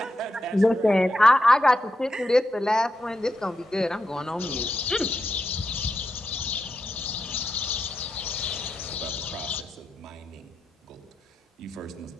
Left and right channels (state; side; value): normal; both; correlation 0.86